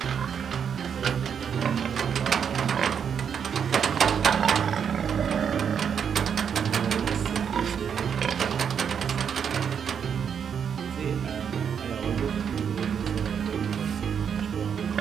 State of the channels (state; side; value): quieter; left; 7.5 dB